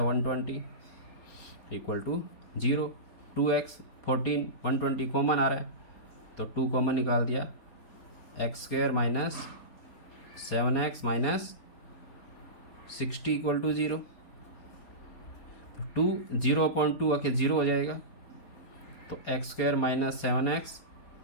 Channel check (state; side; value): late; right; 4.3 ms